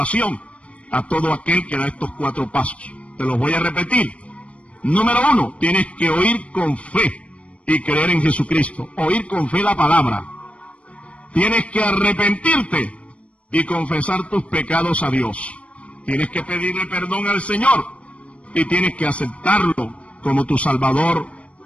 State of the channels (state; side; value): late; right; 0.063 ms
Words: a todo aquel que da estos 4 pasos. Te los voy a repetir. Número 1, tienes que oír con fe y creer en Jesucristo. Oír con fe la palabra. Tienes que arrepentirte y confesar tus pecados a Dios. Tienes que pedirle perdón al Señor y tienes que aceptarlo como tu Salvador